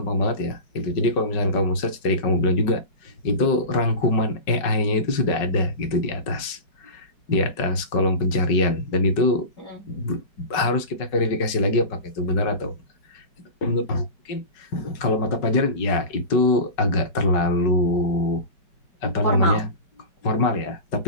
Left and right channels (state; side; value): late; right; 5.3 ms